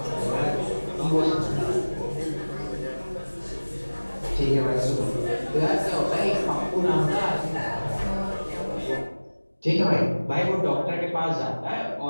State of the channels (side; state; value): both; inverted; correlation -1.00